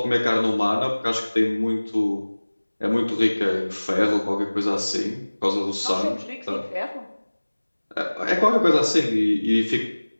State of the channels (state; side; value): inverted; both; correlation -1.00